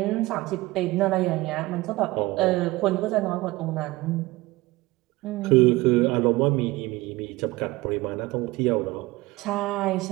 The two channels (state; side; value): quieter; left; 20.3 dB